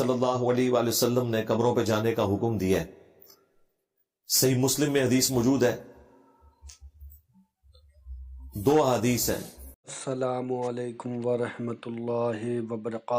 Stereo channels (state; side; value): identical; both; correlation 1.00